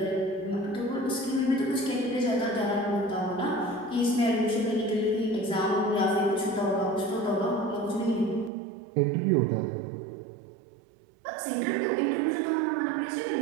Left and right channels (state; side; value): drops out; left; at 8.5 s